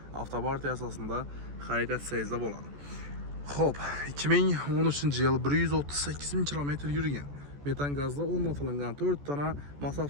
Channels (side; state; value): left; late; 14 ms